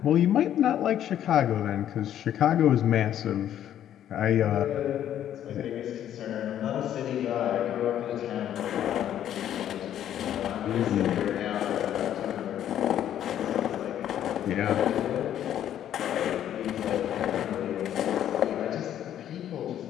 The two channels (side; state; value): right; quieter; 10.9 dB